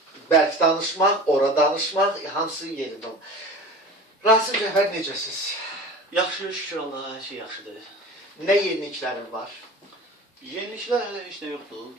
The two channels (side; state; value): both; normal; correlation 0.37